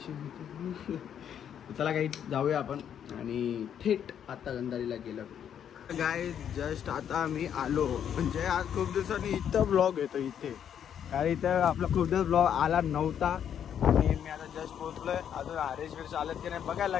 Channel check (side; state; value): right; quieter; 9.0 dB